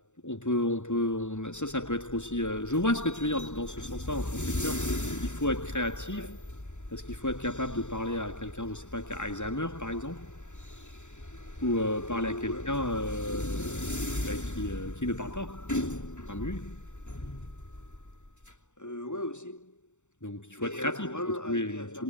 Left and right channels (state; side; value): late; right; 0.84 ms